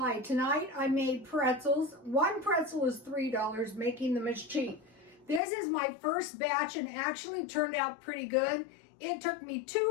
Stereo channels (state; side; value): drops out; right; at 5.4 s